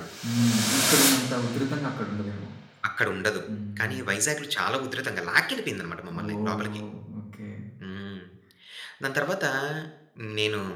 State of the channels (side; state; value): both; identical; correlation 1.00